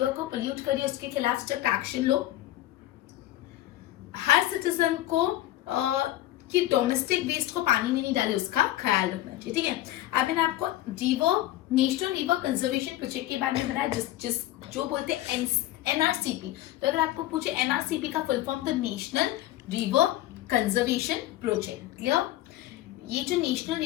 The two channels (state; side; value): quieter; right; 14.7 dB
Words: को पोल्यूट करे उसके खिलाफ स्ट्रिक्ट एक्शन लो। हर सिटीजन को कि डोमेस्टिक वेस्ट को पानी में नहीं डाले उसका ख्याल रखना चाहिए, ठीक है। अब मैंने आपको नेशनल रिवर कंजर्वेशन प्रोजेक्ट के बारे में बताया, जिस जो बोलते हैं एनआरसीपी। तो अगर आपको पूछे एनआरसीपी का फुल फॉर्म, तो national river conservation project, clear. ये जो national